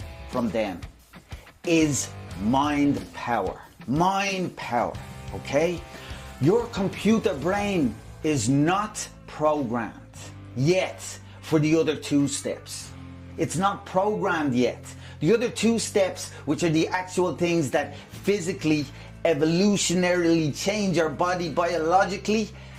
from them is mind power. Mind power, okay? Your computer brain is not programmed yet for the other 2 steps. It's not programmed yet. The other 2 steps, which are the actual things that physically, evolutionarily change your body biologically,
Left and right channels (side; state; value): both; identical; correlation 1.00